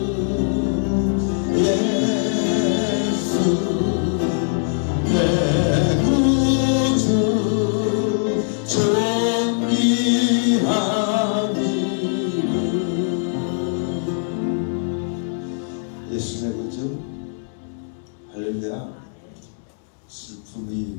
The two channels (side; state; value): right; silent; digital silence